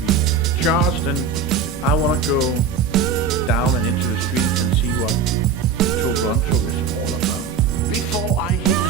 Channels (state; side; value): quieter; left; 5.7 dB